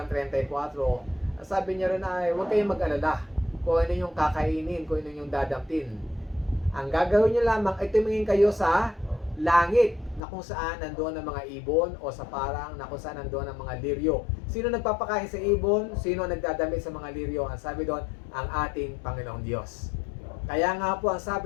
34, sabi niya rin ay huwag kayong mag-alala kung ano yung kakainin, kung ano yung dadamtin. Ang gagawin niyo lamang ay tumingin kayo sa langit na kung saan nandoon ang mga ibon o sa parang na kung saan nandoon ang mga liryo. Sino nagpapakain sa ibon? Sino nagdadamit sa mga liryo? Ang sabi doon, ang ating Panginoong Diyos. Kaya nga po ang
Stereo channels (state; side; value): drops out; right; at 10.2 s